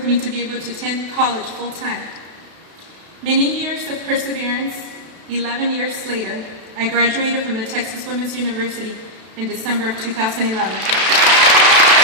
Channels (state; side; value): late; left; 32 ms